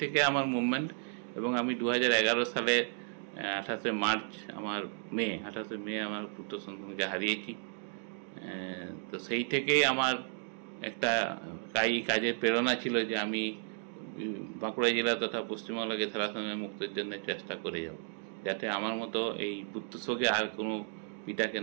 থেকে আমার মুভমেন্ট, এবং আমি 2011 সালে 28 মার্চ আমার মেয়ে আমার পুত্র সন্তানকে হারিয়েছি। তো সেই থেকেই আমার একটা কাজের প্রেরণা ছিল যে আমি বাঁকুড়া জেলা তথা পশ্চিমবঙ্গকে থ্যালাসেমিয়া মুক্তের জন্য চেষ্টা করে যাব, যাতে আমার মতো এই পুত্রশোকে আর কোনো পিতাকে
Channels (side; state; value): left; silent; 55 dB below the other